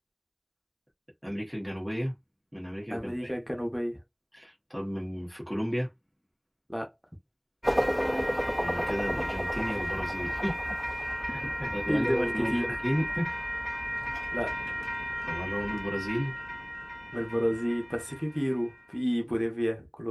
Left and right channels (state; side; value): identical; both; correlation 1.00